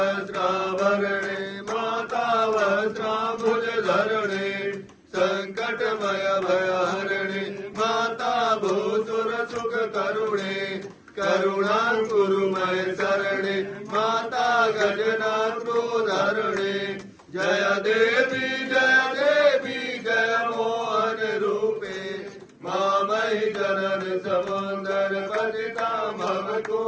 माता वस्त्राम्बुजधरणे संकटमय भयहरणे माता भूसुर सुख करुणे करुणाकुरुमय शरणे माता गजनाथोधरणे जय देवी जय मोहन रूपे मामयि जनन समुंदर पतिता मम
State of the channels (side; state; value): both; identical; correlation 1.00